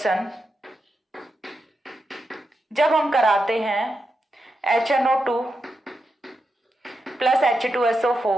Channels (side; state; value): both; normal; correlation 0.87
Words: जब हम कराते हैं HNO2 प्लस